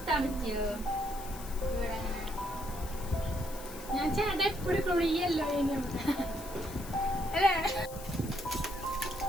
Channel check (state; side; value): noise; left; hiss, 14 dB below the sound